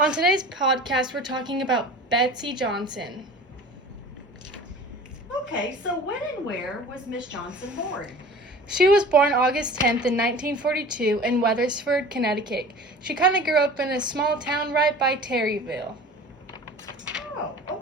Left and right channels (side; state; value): both; normal; correlation 0.41